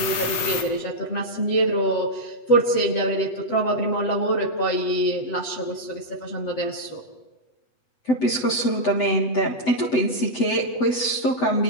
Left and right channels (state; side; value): late; right; 8.0 ms